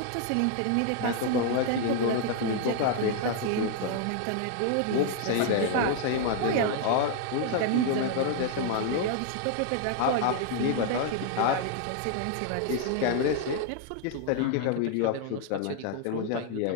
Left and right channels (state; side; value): different; both; correlation 0.00